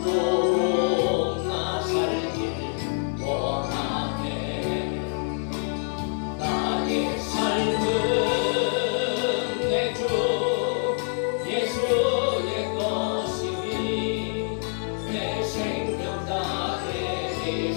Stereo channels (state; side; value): silent; right; 61 dB below the other